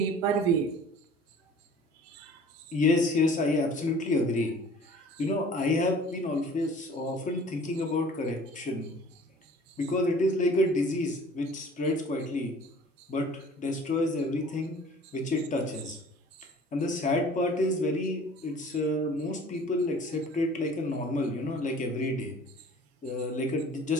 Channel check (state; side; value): normal; both; correlation 0.48